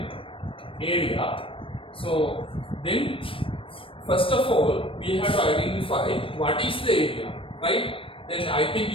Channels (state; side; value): late; right; 0.26 ms